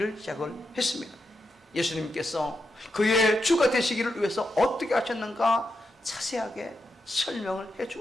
시작을 했습니다. 예수님께서 그의 주가 되시기를 위해서 어떻게 하셨는가 자세하게 설명을 해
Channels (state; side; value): normal; both; correlation 0.85